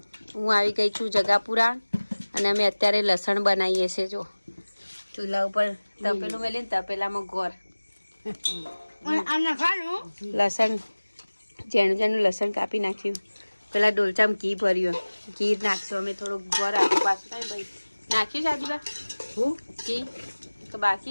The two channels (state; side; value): inverted; both; correlation -1.00